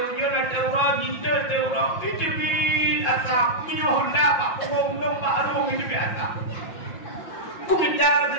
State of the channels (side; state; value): right; late; 5.6 ms